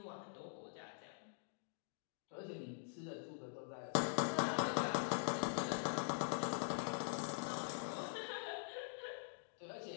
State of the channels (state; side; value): silent; right; digital silence